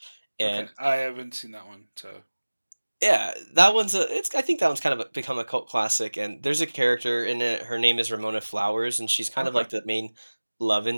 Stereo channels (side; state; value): both; inverted; correlation -1.00